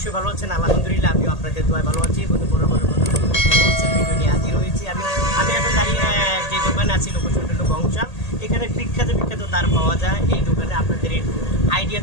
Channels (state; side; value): late; right; 1.8 ms